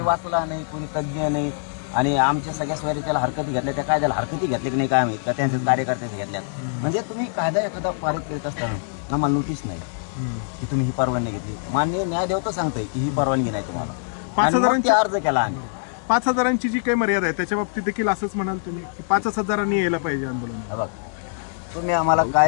वाचला नाही कोणी तज्ज्ञ नाही आणि आमच्या सगळ्या सोयरीच्याला हरकती घेतल्या त्या कायद्याला हरकती घेतल्या की नाही काय माहित का त्यांच्या कार्यकर्त्याच्या घेतल्यात म्हणजे तुम्ही कायदा एखादा पारित करीत असताना आम्हाला नोटीस नाही की तुम्ही ही परवानगी घेतली मान्य न्यायदेवता सांगताय की ही परवानगी नाही तुम्हाला 5,000 अर्ज केला आम्ही 5,000ची जी काही मर्यादा आहे त्याच्या बाबतीत देखील असंच म्हणाल तुम्ही की 5,000 यायला पाहिजे आंदोलन तुम्ही आम्हाला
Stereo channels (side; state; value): right; silent; digital silence